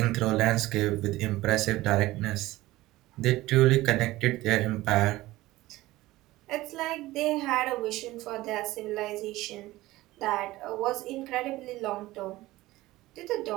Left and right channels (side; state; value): left; quieter; 17.8 dB